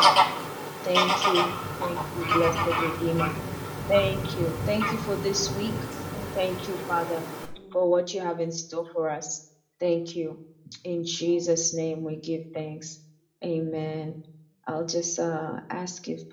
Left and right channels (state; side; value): identical; both; correlation 1.00